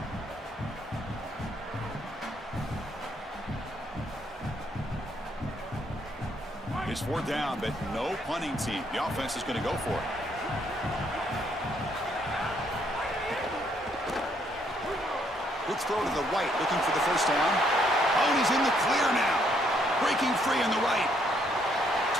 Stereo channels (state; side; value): normal; both; correlation 0.70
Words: It's 4th down, but no punting team. The offense is going to go for it. Quick throw to the right, looking for the first down. Oh, and he's in the clear now. Breaking free on the right.